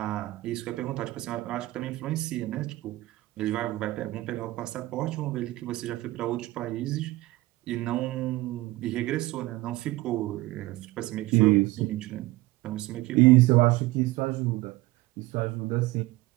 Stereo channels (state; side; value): quieter; left; 19.1 dB